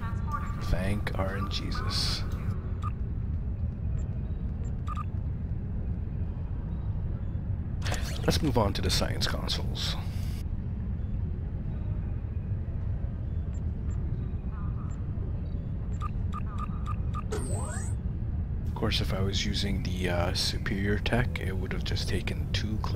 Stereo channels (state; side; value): identical; both; correlation 1.00